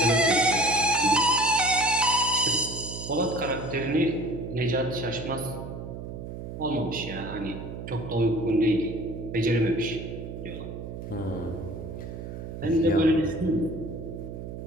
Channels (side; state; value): right; noise; hum, 9 dB below the sound